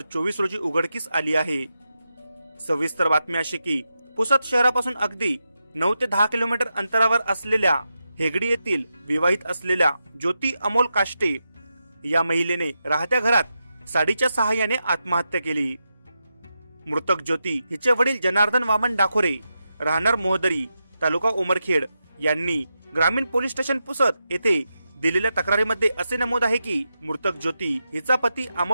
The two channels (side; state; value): both; inverted; correlation -0.88